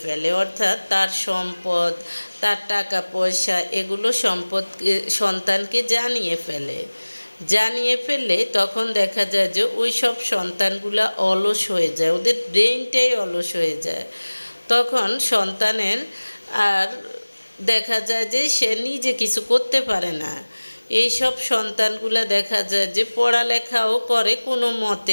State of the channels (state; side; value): inverted; both; correlation -1.00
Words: ফেলে, অর্থাৎ তার সম্পদ, তার টাকা পয়সা এগুলো সন্তানকে জানিয়ে ফেললে তখন দেখা যায় যে ওই সব সন্তানগুলা অলস হয়ে যায়, ওদের ব্রেনটাই অলস হয়ে যায়। তখন সন্তানের আর দেখা যায় যে সে নিজে কিছু করতে পারে না। এইসব সন্তানগুলা দেখা যায় যে পড়ালেখাও করে, কোনো মতে